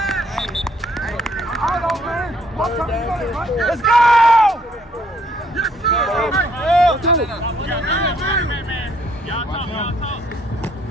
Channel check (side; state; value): both; normal; correlation 0.66